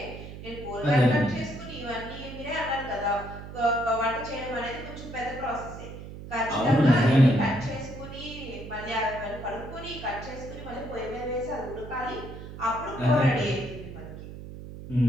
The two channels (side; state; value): right; noise; hum, 12 dB below the sound